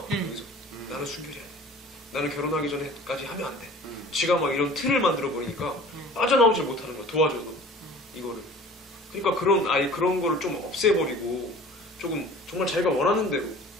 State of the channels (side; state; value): both; normal; correlation 0.45